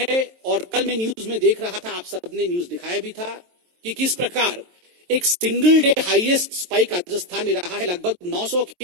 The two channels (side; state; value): left; late; 23 ms